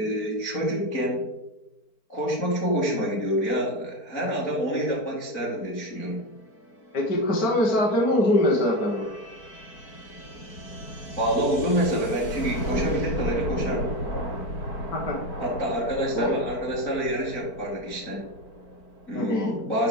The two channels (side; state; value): right; late; 4.5 ms